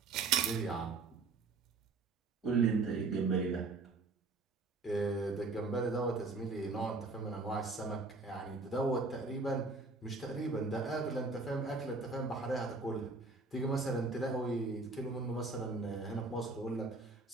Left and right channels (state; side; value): quieter; left; 3.7 dB